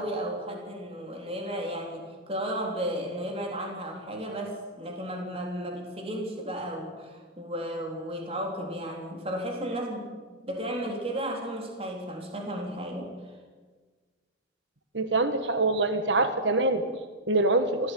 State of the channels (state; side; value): normal; both; correlation -0.09